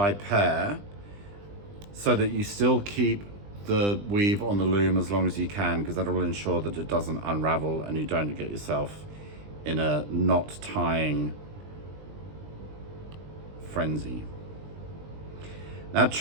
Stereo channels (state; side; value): late; left; 20 ms